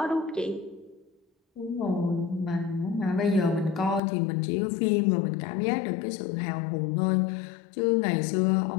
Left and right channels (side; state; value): right; drops out; at 4.0 s